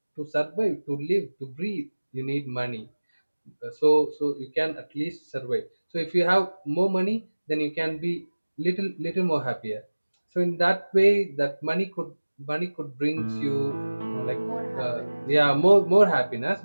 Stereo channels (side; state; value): both; inverted; correlation -1.00